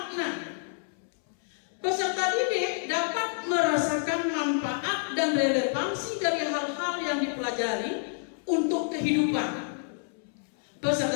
Peserta didik dapat merasakan manfaat dan relevansi dari hal-hal yang dipelajari untuk kehidupan.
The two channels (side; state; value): right; silent; 59 dB below the other